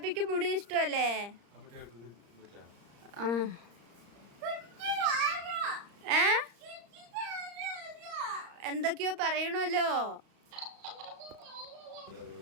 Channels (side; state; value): left; late; 35 ms